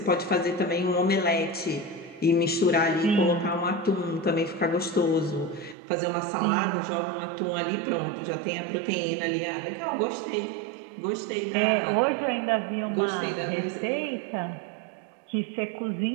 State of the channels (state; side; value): drops out; left; at 5.8 s